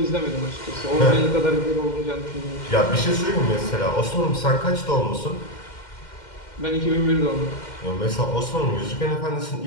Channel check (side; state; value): right; late; 2.1 ms